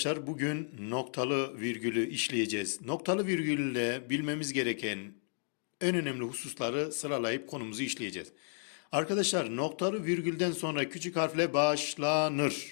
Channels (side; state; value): right; silent; digital silence